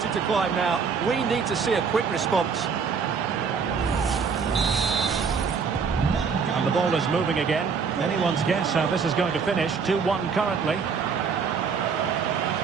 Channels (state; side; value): quieter; left; 5.8 dB